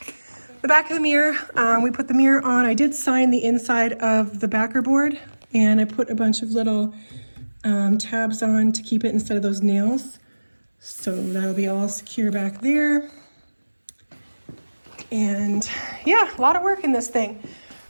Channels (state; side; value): inverted; both; correlation -1.00